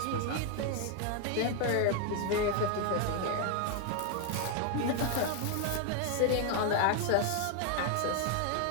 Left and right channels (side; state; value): both; different; correlation 0.00